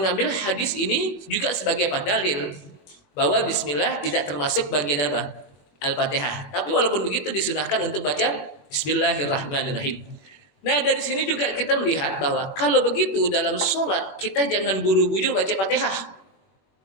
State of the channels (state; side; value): late; right; 21 ms